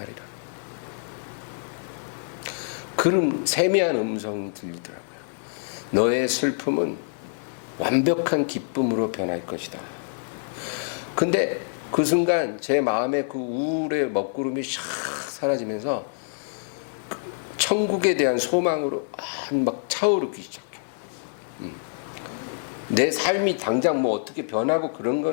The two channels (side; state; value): right; silent; 60 dB below the other